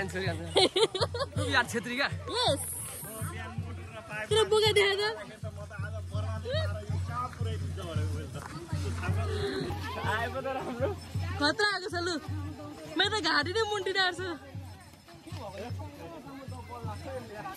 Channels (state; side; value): identical; both; correlation 1.00